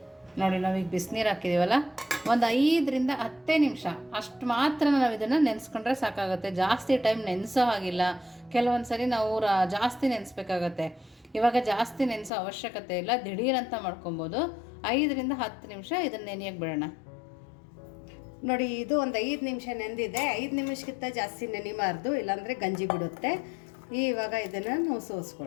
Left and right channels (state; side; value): drops out; right; at 12.3 s